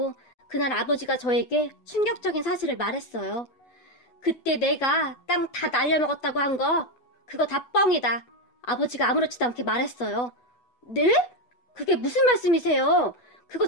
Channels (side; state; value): right; late; 8.1 ms